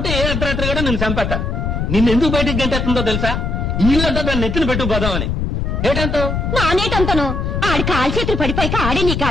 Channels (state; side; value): noise; left; rumble, 1 dB below the sound